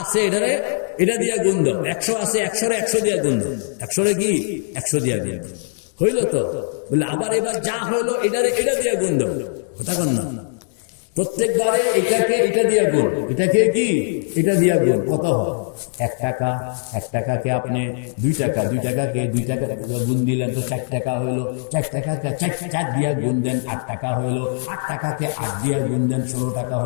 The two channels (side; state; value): right; silent; digital silence